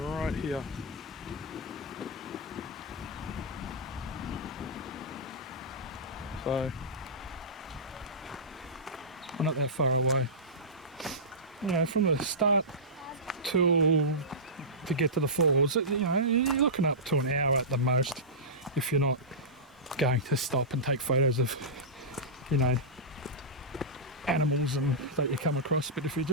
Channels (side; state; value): both; normal; correlation -0.16